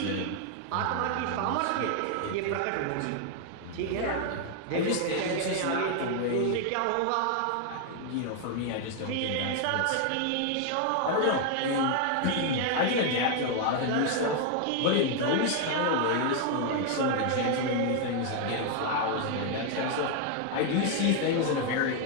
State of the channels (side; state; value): both; different; correlation 0.00